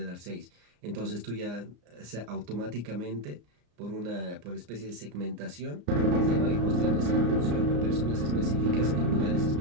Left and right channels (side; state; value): left; late; 34 ms